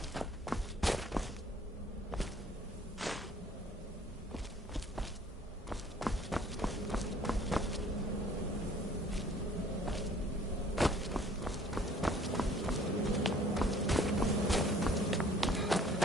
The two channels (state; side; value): normal; both; correlation 0.55